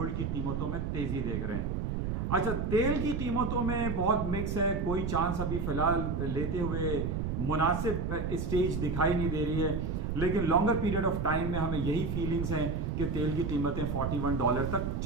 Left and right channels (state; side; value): noise; right; rumble, 1 dB below the sound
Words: की कीमतों में तेजी देख रहे हैं। अच्छा, तेल की कीमतों में बहुत मिक्स है, कोई चांस अभी फिलहाल लेते हुए मुनासिब स्टेज दिखाई नहीं दे रही है, लेकिन लॉन्गर पीरियड ऑफ टाइम में हमें यही फीलिंग्स हैं कि तेल की कीमतें $41 तक